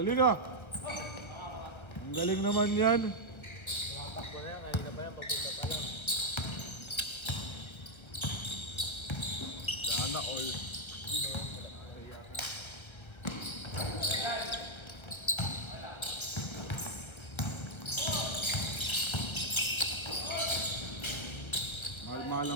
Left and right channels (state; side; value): late; right; 1.3 ms